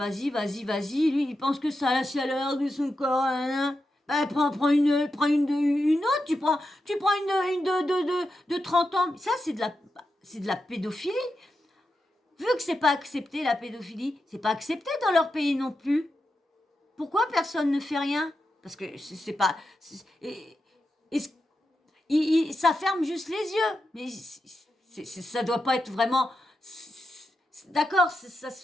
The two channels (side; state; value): both; normal; correlation 0.88